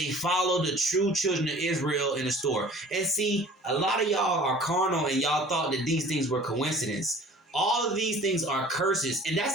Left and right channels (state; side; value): normal; both; correlation 0.47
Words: follow the true children of Israel in the store. And see, a lot of y'all are carnal, and y'all thought that these things were coincidence. All of these things are curses. And I